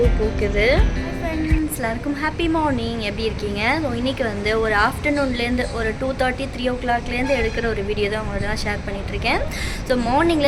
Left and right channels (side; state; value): both; identical; correlation 1.00